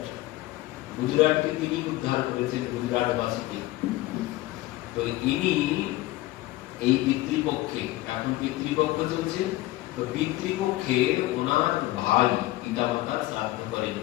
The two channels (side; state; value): right; quieter; 17.6 dB